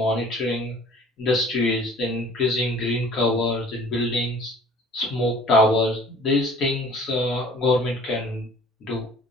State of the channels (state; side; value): normal; both; correlation 0.50